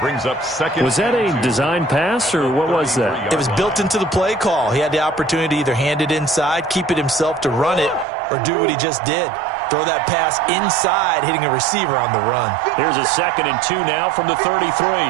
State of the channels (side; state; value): left; drops out; at 8.1 s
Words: up second. Was that a design pass, or what was that? It was built into the play call. He had the opportunity to either hand it inside, keep it himself to run it, or do what he just did. Throw that pass inside, hitting a receiver on the run. Here's a 2nd and 2 now from the